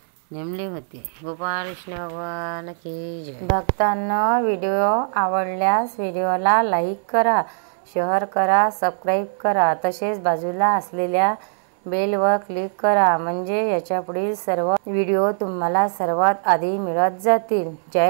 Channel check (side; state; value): left; silent; digital silence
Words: नेमले होते. गोपाळ कृष्ण भगवान की जय. भक्तांनो, व्हिडिओ आवडल्यास व्हिडिओला लाईक करा, शेअर करा, सबस्क्राईब करा. तसेच बाजूला असलेल्या बेलवर क्लिक करा, म्हणजे याच्यापुढील सर्व व्हिडिओ तुम्हाला सर्वात आधी मिळत जातील.